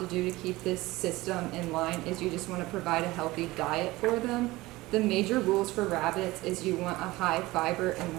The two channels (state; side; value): quieter; left; 19.7 dB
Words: do to keep this system in line is you just want to provide a healthy diet for them. The major rules for rabbits is you want a high fiber